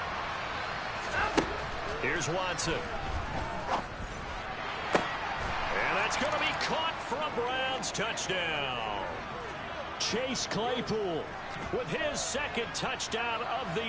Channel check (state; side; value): identical; both; correlation 1.00